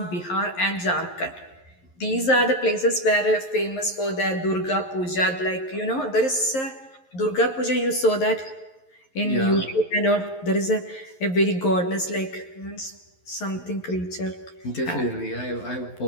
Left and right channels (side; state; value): right; late; 11 ms